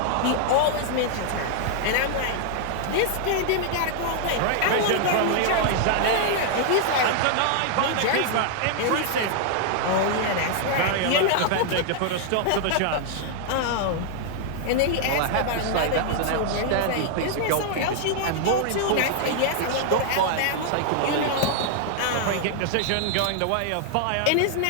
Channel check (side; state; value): both; different; correlation 0.00